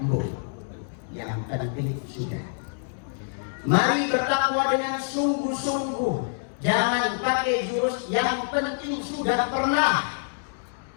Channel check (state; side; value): silent; right; digital silence